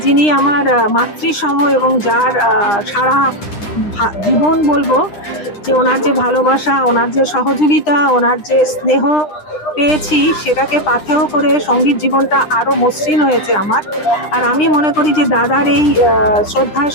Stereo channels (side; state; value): right; late; 9.9 ms